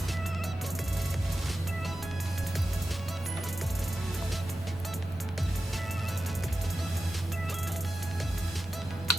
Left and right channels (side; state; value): both; normal; correlation 0.92